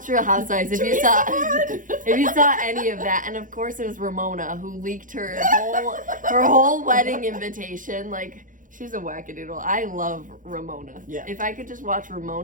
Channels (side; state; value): left; late; 0.38 ms